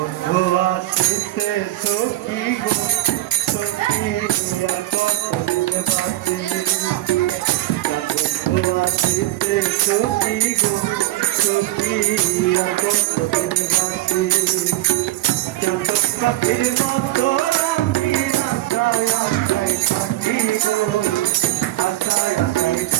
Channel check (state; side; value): quieter; left; 16.0 dB